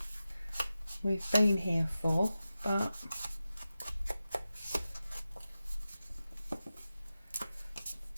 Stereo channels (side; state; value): both; inverted; correlation -0.93